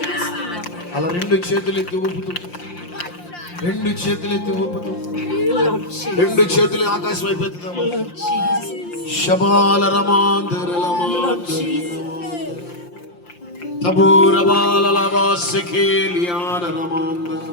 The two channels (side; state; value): right; late; 5.7 ms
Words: అలా రెండు చేతులు ఎత్తి ఊపుతూ, రెండు చేతులు ఎత్తి ఊపుతూ, రెండు చేతులు ఆకాశం అయిపోతుంది. శబాల రమాందర